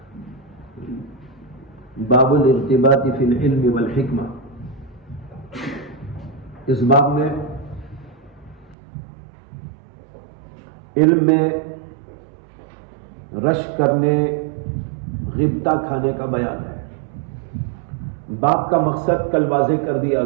باب الارتباط فی العلم والحکمہ۔ اس باب میں علم میں رش کرنے، غبطہ کھانے کا بیان ہے۔ باب کا مقصد کل واضح کر دیا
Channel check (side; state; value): left; drops out; at 8.8 s